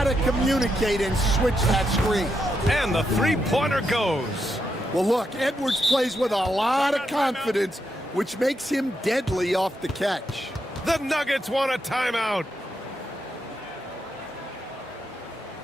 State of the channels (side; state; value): both; normal; correlation 0.82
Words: communicate and switch that screen. And the three-pointer goes. Well, look, Edwards plays with a lot of confidence, which makes him deadly off the catch. The Nuggets want a timeout.